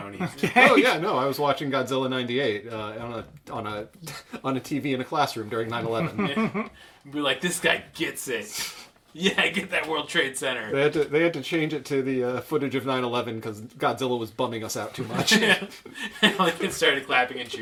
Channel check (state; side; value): identical; both; correlation 1.00